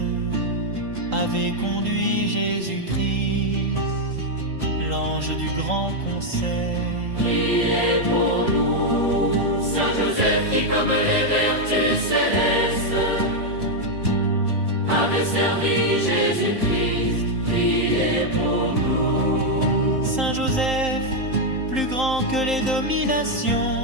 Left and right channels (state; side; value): late; left; 3.9 ms